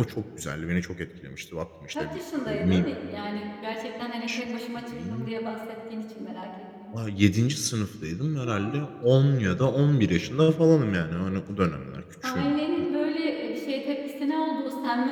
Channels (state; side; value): identical; both; correlation 1.00